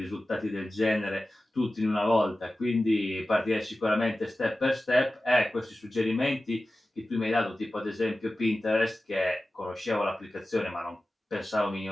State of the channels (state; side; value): normal; both; correlation 0.95